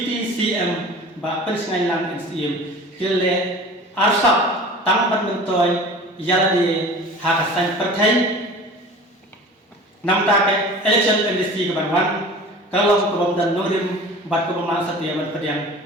but pensiunan lang NCM, kile arsap tangpat mentoy yalade hakasan partai, namta ke election amnesty kebanwan, kalau kebandan norim, bat kebandan setia berpediang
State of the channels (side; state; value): both; normal; correlation 0.40